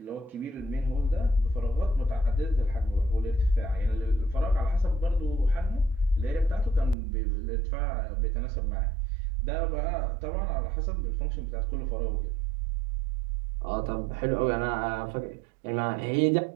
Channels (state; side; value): drops out; left; at 7.0 s